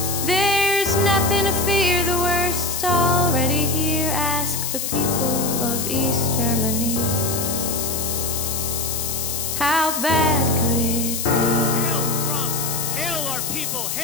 There's nothing to fear, the worst's already here. Ask the people of East Germany. How bad could it be? Hail Trump! Hail our people!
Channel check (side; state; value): left; noise; hiss, 2 dB below the sound